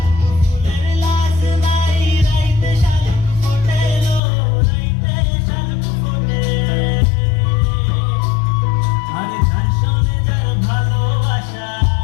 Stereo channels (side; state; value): right; drops out; at 4.2 s